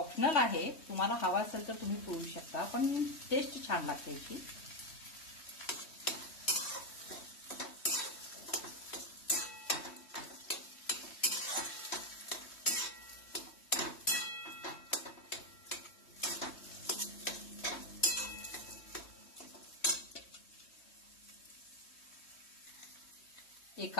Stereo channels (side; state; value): right; late; 3.2 ms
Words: आहे, तुम्हाला हवा असेल तर तुम्ही पिळू शकता, पण टेस्ट छान लागते याची. एक